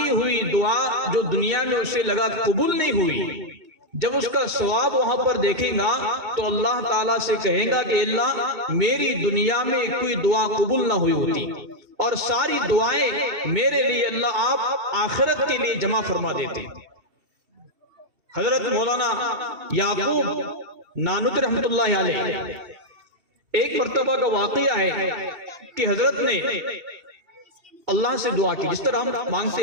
ہوئی دعا جو دنیا میں اسے لگا قبول نہیں ہوئی، جب اس کا ثواب وہاں پر دیکھیں گا تو اللہ تعالیٰ سے کہیں گا کہ اللہ میری دنیا میں کوئی دعا قبول نہ ہوئی ہوتی اور ساری دعائیں میرے لیے اللہ آپ آخرت کے لیے جمع فرما دیتے۔ حضرت مولانا یعقوب نانوتوی رحمت اللہ علیہ ایک مرتبہ کا واقعہ ہے کہ حضرت نے اللہ سے دعا کی، جس طرح ہم مانگتے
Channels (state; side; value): late; left; 2.7 ms